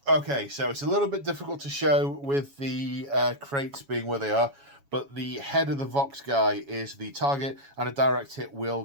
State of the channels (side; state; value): left; late; 7.2 ms